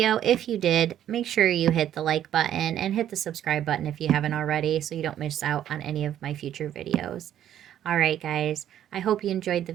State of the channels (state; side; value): quieter; left; 10.9 dB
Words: If you did, make sure you hit the like button and hit the subscribe button if you haven't already, so you don't miss out on any of my future videos. All right, guys, I hope you enjoyed the